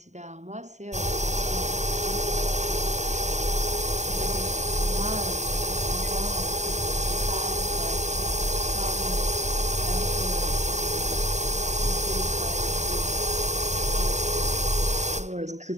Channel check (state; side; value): late; left; 0.34 ms